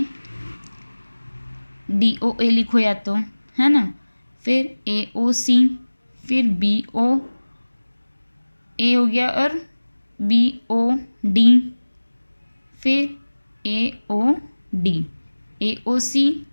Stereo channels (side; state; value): both; inverted; correlation -1.00